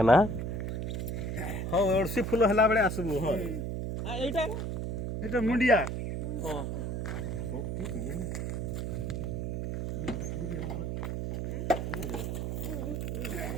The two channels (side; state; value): right; noise; hum, 2 dB below the sound